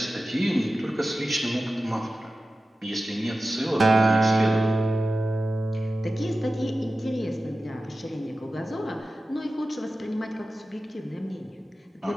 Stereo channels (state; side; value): normal; both; correlation 0.94